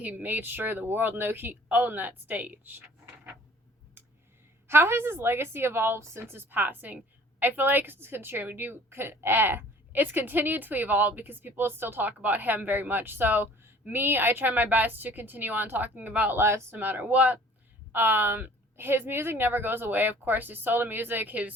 made sure the world knew he owned that stage. How has his legacy evolved since his passing? I feel like it's continued to evolve because people still talk about him very much. So me, I try my best to continue on talking about Les no matter what. His music never goes away. Of course, his solo music,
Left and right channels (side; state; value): both; normal; correlation 0.51